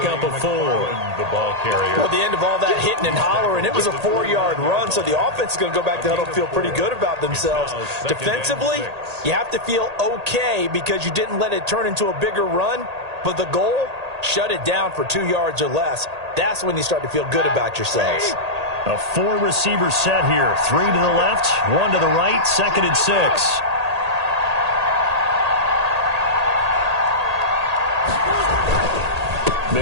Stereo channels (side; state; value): left; late; 1.8 ms